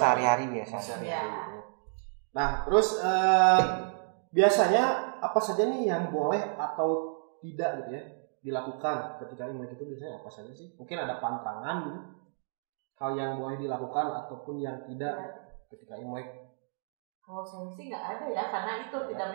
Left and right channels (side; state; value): left; silent; 57 dB below the other